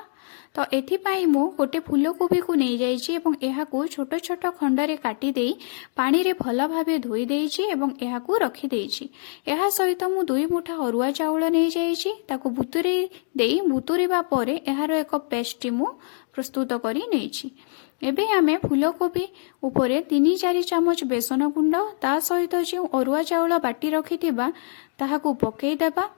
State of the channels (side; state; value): right; silent; digital silence